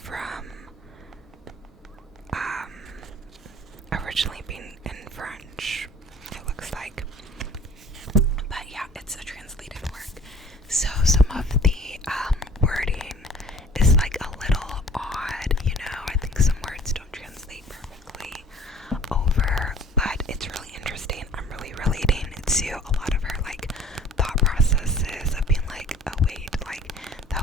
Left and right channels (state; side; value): normal; both; correlation 0.50